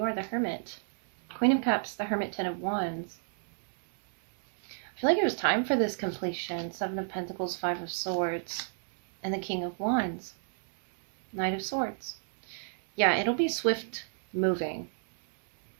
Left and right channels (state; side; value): silent; left; digital silence